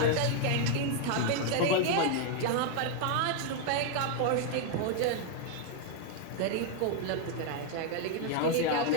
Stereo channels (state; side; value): different; both; correlation 0.00